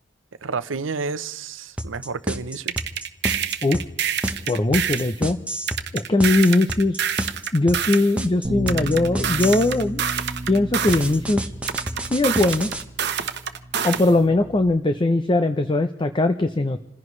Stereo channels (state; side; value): normal; both; correlation 0.69